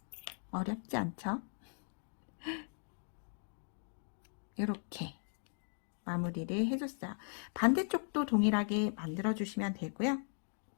어렵지 않죠? 이렇게 마무리를 해줬어요. 반대쪽도 동일하게 만들어주시면 되고요.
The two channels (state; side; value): silent; right; 52 dB below the other